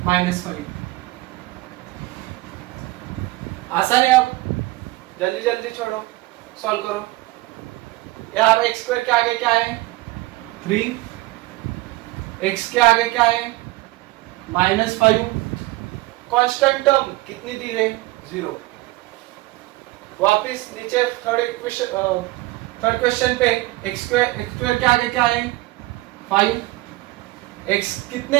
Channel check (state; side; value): quieter; left; 19.9 dB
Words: -5। आसान है। अब जल्दी जल्दी छोड़ो, सॉल्व करो। यार x स्क्वायर के आगे क्या है, 3, x के आगे क्या है, -5, कांस्टेंट टर्म कितनी दी है, 0। वापिस नीचे थर्ड क्वेश्चन पे x स्क्वायर के आगे क्या है, 5, x कितने